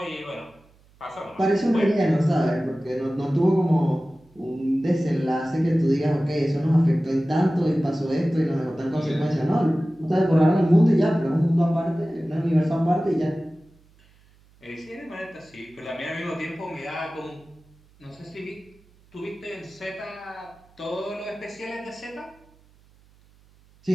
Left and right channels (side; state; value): right; noise; hum, 30 dB below the sound